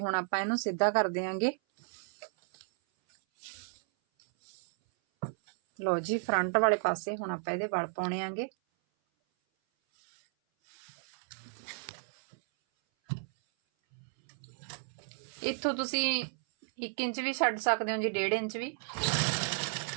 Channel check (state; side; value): silent; left; 56 dB below the other